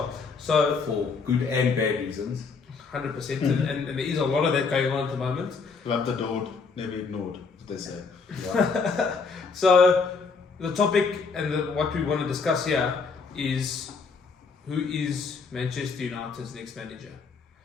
So for good and bad reasons. 100%, and there is a lot of that going on at the moment. Loved, adored, never ignored, as they say. Yeah. So the topic and what we want to discuss here is who is Manchester United's next manager.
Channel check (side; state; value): right; quieter; 4.9 dB